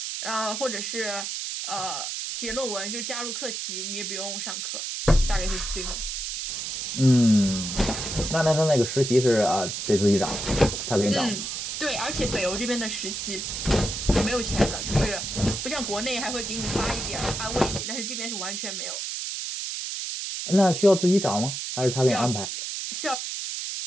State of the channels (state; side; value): noise; right; hiss, 4 dB below the sound